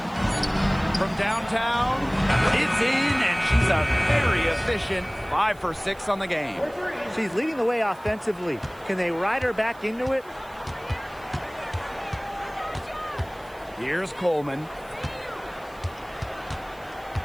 From downtown, it's in, and she's a very efficient 5 for 6 on the game. She's leading the way offensively. Can they ride her back into it? Here's Coleman.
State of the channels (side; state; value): right; noise; hiss, 26 dB below the sound